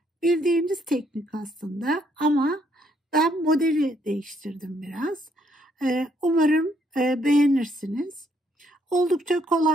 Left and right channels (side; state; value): both; normal; correlation 0.71